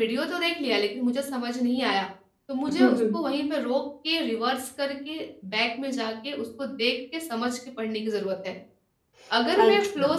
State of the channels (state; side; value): identical; both; correlation 1.00